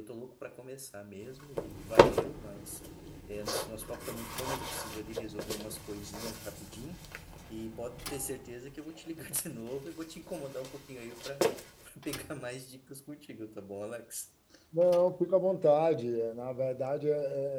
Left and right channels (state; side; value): identical; both; correlation 1.00